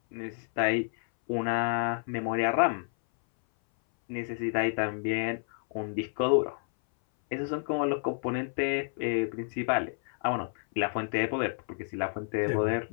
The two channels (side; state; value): right; silent; 58 dB below the other